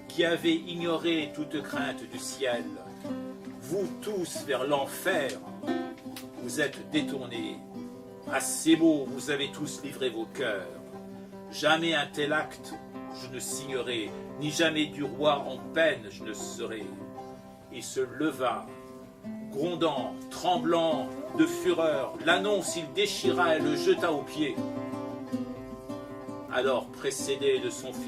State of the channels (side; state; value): both; identical; correlation 1.00